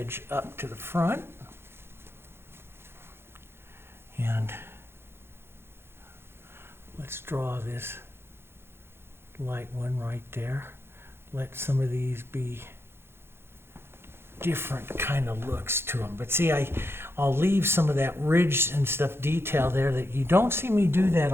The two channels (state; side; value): late; left; 0.11 ms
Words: up to the front. And let's draw this light one right there. Let some of these be different kind of looks to them. But see, I'll leave some of that ridge and stuff detail there that you don't see me do that